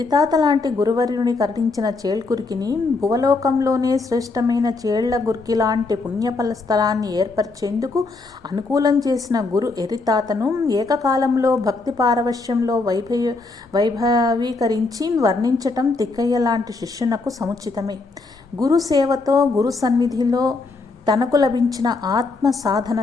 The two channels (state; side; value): quieter; right; 3.7 dB